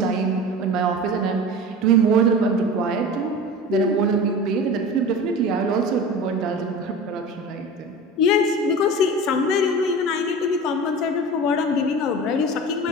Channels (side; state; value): both; normal; correlation 0.33